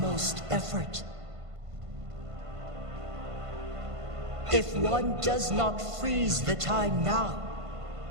effort. If one does not freeze the time now,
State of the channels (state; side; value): late; left; 1.5 ms